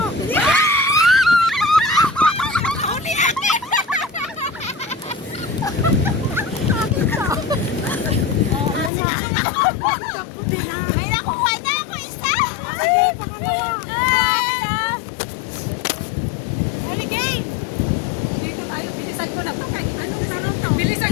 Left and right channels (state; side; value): drops out; right; at 8.9 s